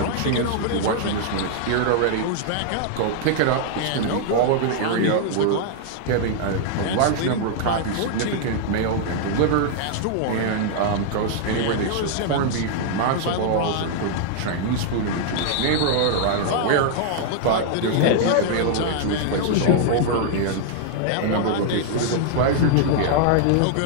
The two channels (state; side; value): different; both; correlation -0.01